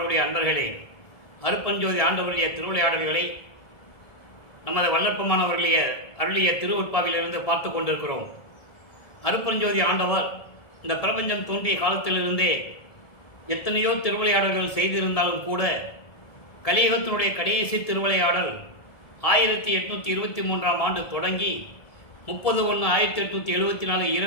அன்பர்களே, அருட்பெருஞ்சோதி ஆண்டவருடைய திருவிளையாடல்களை நமது வல்லற்பமானவர்களுடைய அருளிய திருவுட்பாவிலிருந்து பார்த்து கொண்டிருக்கிறோம். அருட்பெருஞ்சோதி ஆண்டவர் இந்த பிரபஞ்சம் தோன்றிய காலத்திலிருந்தே எத்தனையோ திருவிளையாடல்கள் செய்திருந்தாலும் கூட கலியுகத்தினுடைய கடைசி திருவிளையாடல் 1823ஆம் ஆண்டு தொடங்கி 30/1/1874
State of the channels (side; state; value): right; late; 1.7 ms